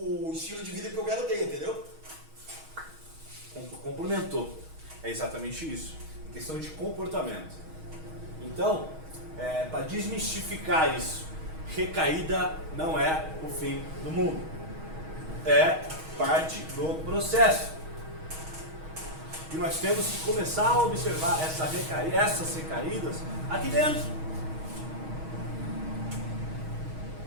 estilo de vida que eu quero ter, entendeu? Complementou. É exatamente isso. Questão de comportamento. Então, para desmistificar isso, recaída não é o fim do mundo. É parte do processo. E nós temos que começar a observar essas recaídas aqui dentro.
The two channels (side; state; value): left; late; 6.3 ms